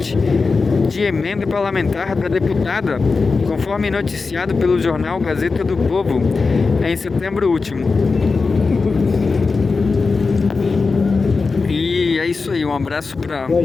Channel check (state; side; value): quieter; right; 4.3 dB